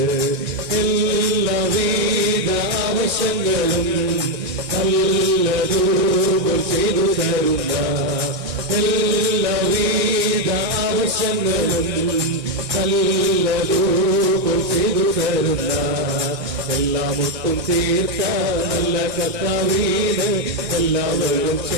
എല്ലാവിധ ആവശ്യങ്ങളും നല്ലതുപോൽ ചെയ്തു തരുന്ന, എല്ലാവിധ ആവശ്യങ്ങളും നല്ലതുപോൽ ചെയ്തു തരുന്ന, എല്ലാമൊട്ടും തീർത്ത നല്ല കർത്താവിന് എല്ലാവരും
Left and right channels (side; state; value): left; late; 1.6 ms